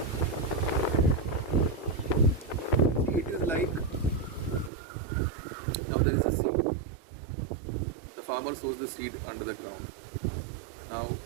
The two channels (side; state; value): left; drops out; at 4.7 s